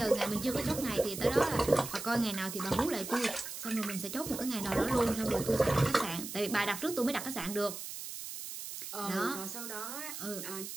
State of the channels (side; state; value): right; noise; hiss, 8 dB below the sound